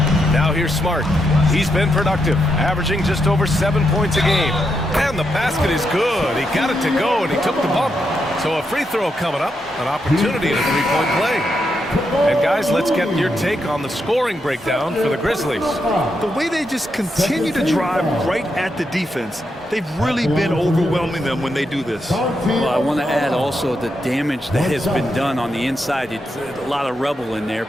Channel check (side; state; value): both; normal; correlation 0.82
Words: Now here's Smart. He's been productive, averaging just over 7 points a game. And the basket is good. He got it to go, and he took the bump. So a free throw coming up, an opportunity at a three-point play. And guys, let's get your take on the scoring breakdown for the Grizzlies. The way they just continue to drive right at the defense, they've really been overwhelming them when they do this. Well, I want to add also the damage that has been done on the inside. It's a lot of rubble in there,